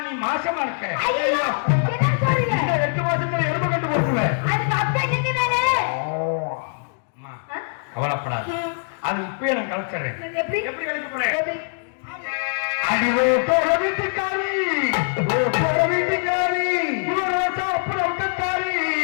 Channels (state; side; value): silent; right; digital silence